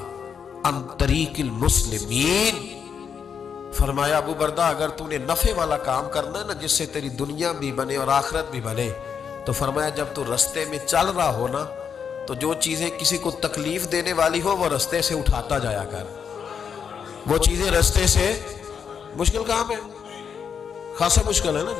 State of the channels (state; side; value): quieter; right; 7.0 dB